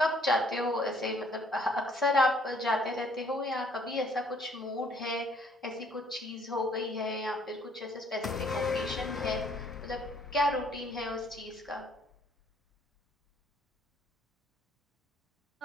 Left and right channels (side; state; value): both; normal; correlation 0.62